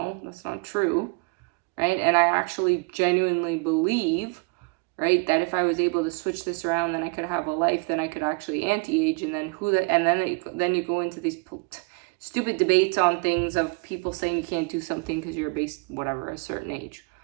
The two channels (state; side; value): quieter; left; 31.7 dB